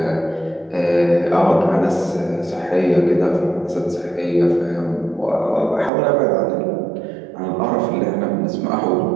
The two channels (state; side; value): drops out; left; at 5.9 s